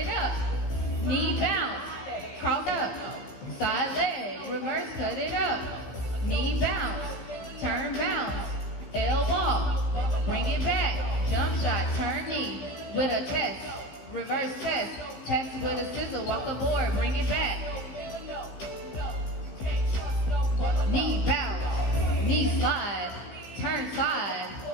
up. Knee bounce, cross up, side leg, reverse, cut it up. Knee bounce, turn bounce, L walk, bring it back, jump shot, turn knee, with a test, reverse test, test with a scissor, walk aboard, bring it back. Knee bounce, knee slide, turn side,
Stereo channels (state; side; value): late; right; 15 ms